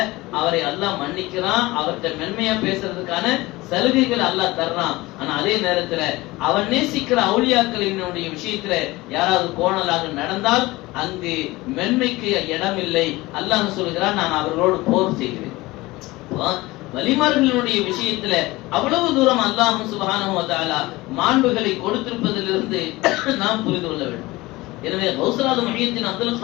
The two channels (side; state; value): right; quieter; 20.3 dB